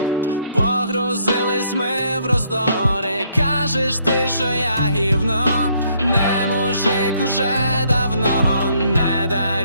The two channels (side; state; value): both; inverted; correlation -0.68